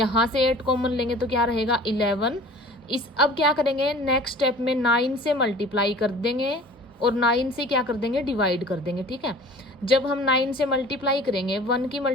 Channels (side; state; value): both; normal; correlation 0.44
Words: से 8 कॉमन लेंगे तो क्या रहेगा 11। इस अब क्या करेंगे, नेक्स्ट स्टेप में 9 से मल्टीप्लाई कर देंगे और 9 से क्या कर देंगे, डिवाइड कर देंगे। ठीक है, जब हम 9 से मल्टीप्लाई करेंगे, 1 की